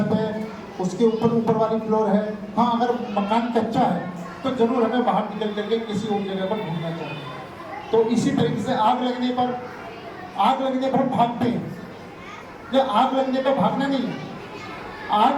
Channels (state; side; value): identical; both; correlation 1.00